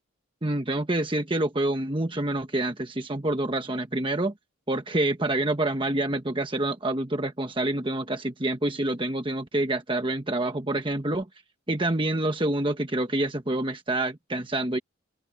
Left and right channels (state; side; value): normal; both; correlation 0.57